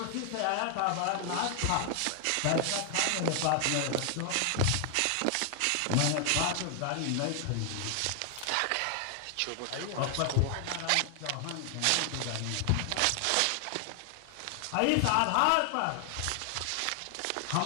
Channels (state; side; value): different; both; correlation 0.00